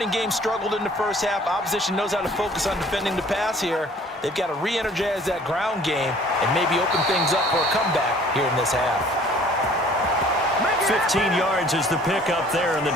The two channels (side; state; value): both; normal; correlation 0.53